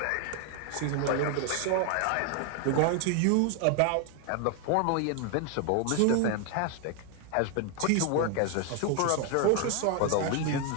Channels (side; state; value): both; different; correlation 0.01